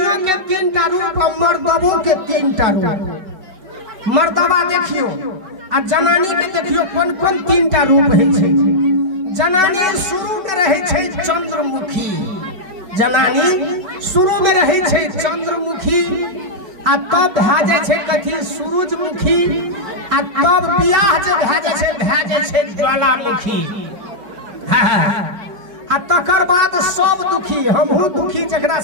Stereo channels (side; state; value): left; late; 5.2 ms